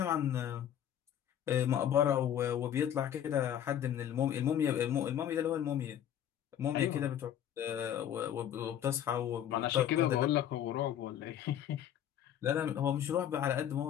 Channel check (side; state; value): right; quieter; 10.3 dB